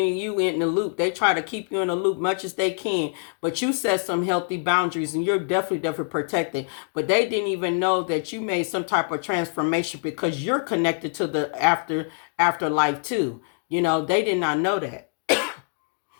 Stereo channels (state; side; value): silent; right; 62 dB below the other